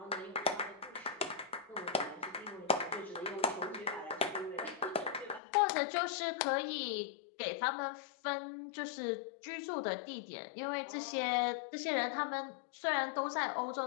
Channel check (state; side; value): drops out; right; at 5.4 s